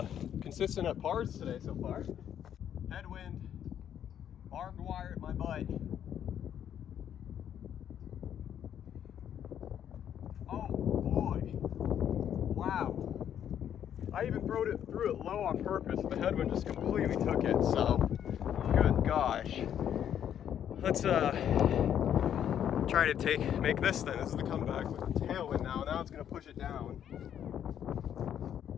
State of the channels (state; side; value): quieter; right; 9.6 dB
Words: consistent at pars today so far. Headwind, barbed wire at my butt. Oh boy, wow. I even threw it low on purpose and the headwind just completely took it, so good gosh. Let's try to make this then. This is the comeback with the tailwind now. Now it's gonna push it down.